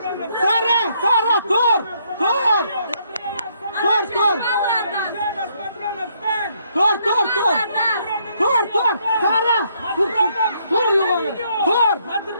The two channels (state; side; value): inverted; both; correlation -0.71